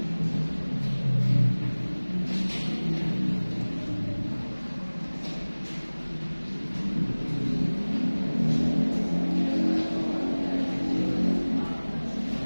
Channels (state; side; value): inverted; both; correlation -1.00